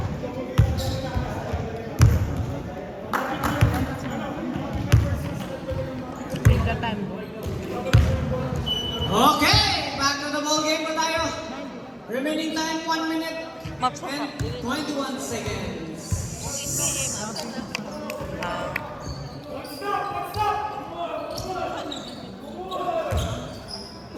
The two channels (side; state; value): both; identical; correlation 1.00